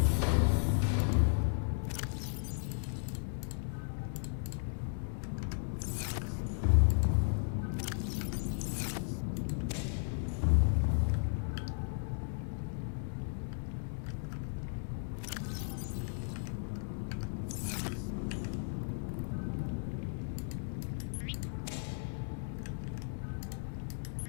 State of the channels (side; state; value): right; silent; digital silence